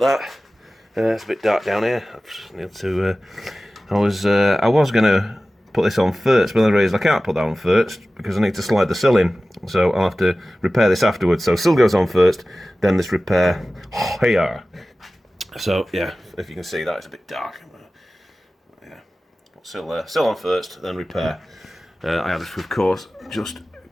that. It's a bit dark down here. I just need to. I was gonna put this on first, but then I realised I can't put that on first because I need to slide the sill in. So I'll have to repair this afterwards. So sill goes on first, then this repair here. So yeah, if you can see that, it's a bit dark. Sill on first, then repair. I had to, of course, just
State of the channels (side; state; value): both; normal; correlation 0.96